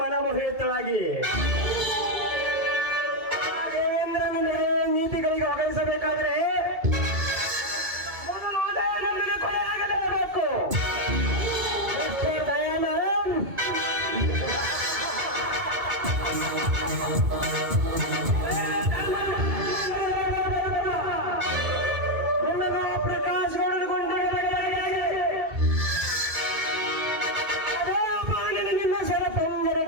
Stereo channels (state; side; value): late; left; 2.2 ms